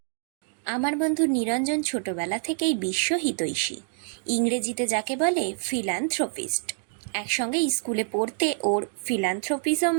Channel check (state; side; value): silent; left; digital silence